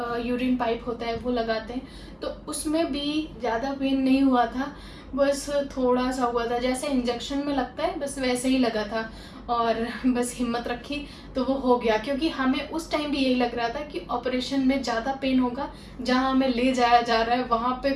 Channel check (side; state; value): both; identical; correlation 1.00